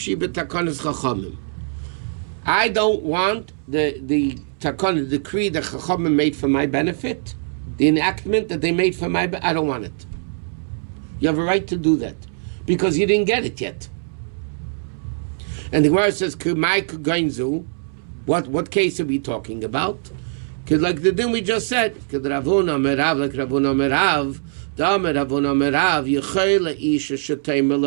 b'takanas chachamim. I don't want the takana, the decree that chachamim made for my benefit, the enactment that they made for my benefit, I don't want it. You have a right to do that, because you didn't get it yet. And the Gemara says, Kumai kugainzu. What case are we talking about? Because like the din we just said, like Ravuna Merav,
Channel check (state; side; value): silent; left; 64 dB below the other